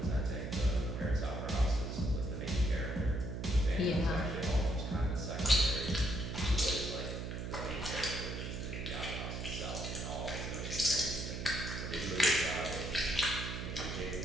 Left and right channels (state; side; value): noise; right; hum, 5 dB below the sound